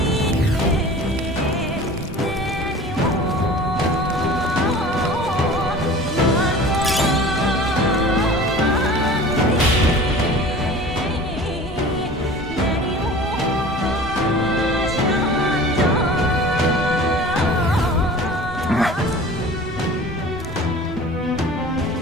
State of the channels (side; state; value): both; normal; correlation 0.41